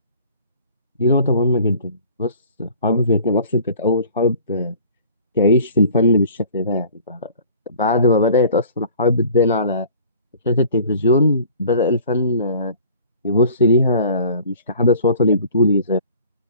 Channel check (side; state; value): both; inverted; correlation -0.49